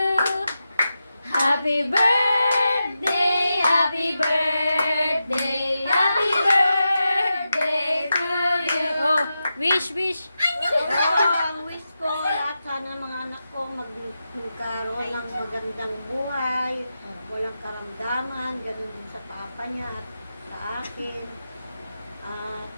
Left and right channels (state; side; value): inverted; both; correlation -0.90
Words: Happy birthday, happy birthday, happy birthday to you. Oh, wish, wish. Ang wish ko, lahat sana mga anak ko magkaroon ng magandang buhay, walang karamdaman, ganun din sa papa niya at sa akin. At